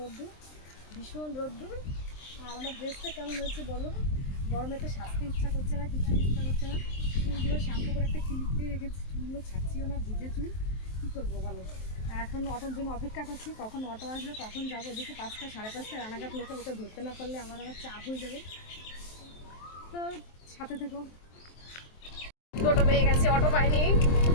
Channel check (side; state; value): right; late; 23 ms